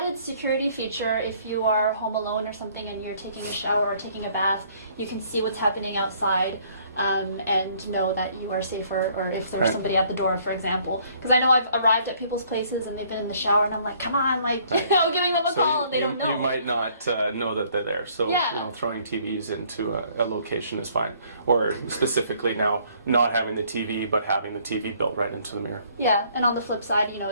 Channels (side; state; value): both; inverted; correlation -0.61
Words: security feature, if you are home alone or something and you're taking a shower or taking a bath, you can see what's happening outside and know that you are safer, or if there's somebody at the door, for example. Because I know I've arrived at people's places and they've been in the shower and I'm like, come on, like, you know, giving them a call and they don't know. You might not know that they're there, so you know, throwing TVs into a location is fine. Or specifically now, not having the TV, but having the TV built right into the mirror. Yeah, and on the flip side, you know,